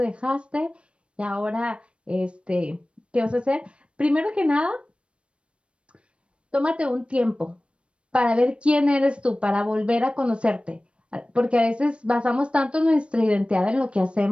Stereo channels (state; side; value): late; left; 0.059 ms